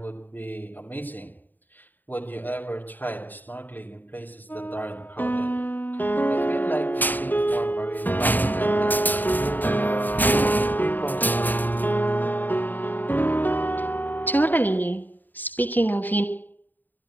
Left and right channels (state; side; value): late; right; 0.088 ms